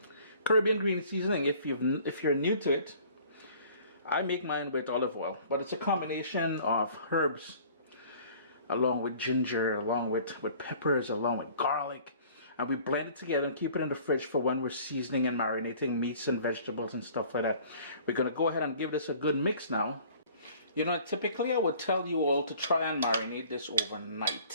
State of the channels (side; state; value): both; inverted; correlation -0.51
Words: Caribbean green seasoning, if you're new to it, I make mine with olive oil, but it's a combination of herbs along with ginger, along with peppers, along with garlic, and we blend it together and keep it in the fridge for when we're seasoning and marinating meats and vegetables and stuff like that. We're gonna go ahead and give this a good mix now. You know, typically I would tell you all to try and marinate this